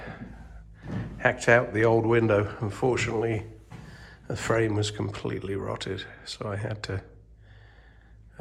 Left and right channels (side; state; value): both; identical; correlation 1.00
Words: hacked out the old window. Unfortunately, the frame was completely rotted, so I had to